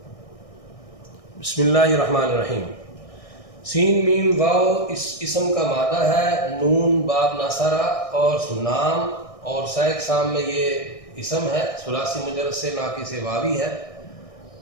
بسم اللہ الرحمن الرحیم۔ سین میم واو اس اسم کا مادہ ہے، نون باب ناصرہ اور نام، اور سہ اقسام میں یہ اسم ہے، ثلاثی مجرد سے، ناقص واوی ہے۔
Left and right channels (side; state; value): right; late; 1.6 ms